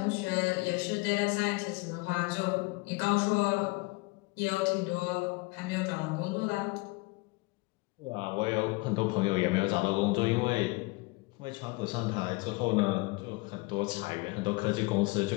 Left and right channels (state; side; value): quieter; right; 25.4 dB